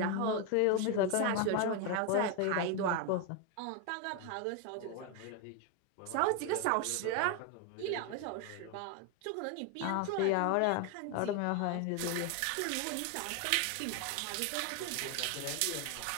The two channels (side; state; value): both; different; correlation 0.01